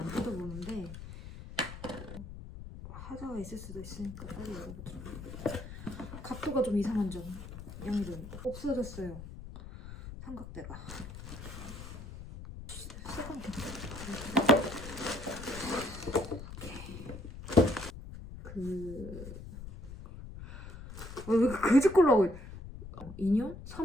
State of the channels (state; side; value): noise; left; rumble, 11 dB below the sound